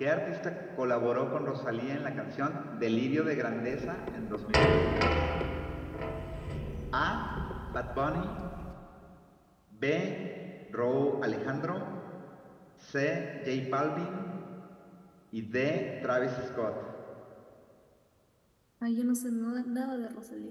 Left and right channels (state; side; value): identical; both; correlation 1.00